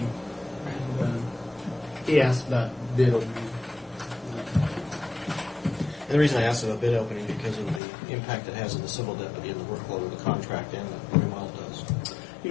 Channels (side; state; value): right; drops out; at 7.8 s